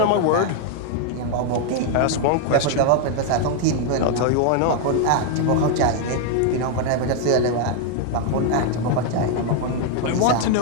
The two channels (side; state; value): both; different; correlation 0.00